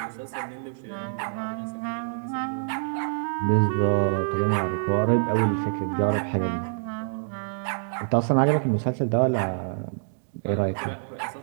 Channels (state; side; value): silent; left; digital silence